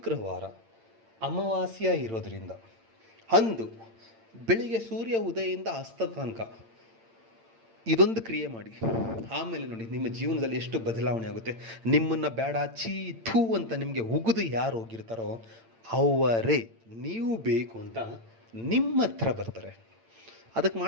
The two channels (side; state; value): left; late; 8.8 ms